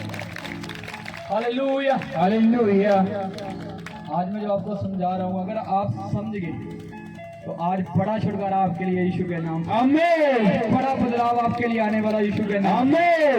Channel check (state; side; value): identical; both; correlation 1.00